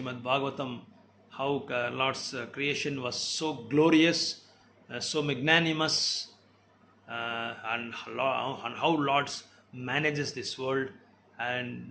Bhagavatam, how Lord's creation was so glorious, so magnanimous, and how Lord manages this world.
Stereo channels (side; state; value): both; identical; correlation 1.00